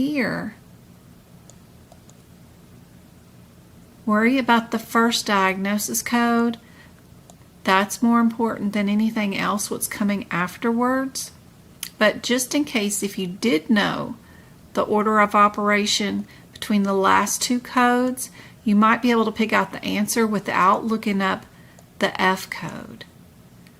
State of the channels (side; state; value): both; identical; correlation 1.00